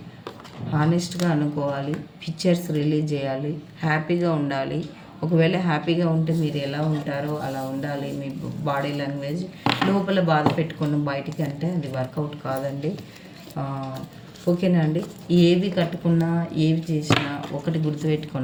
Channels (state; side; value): identical; both; correlation 1.00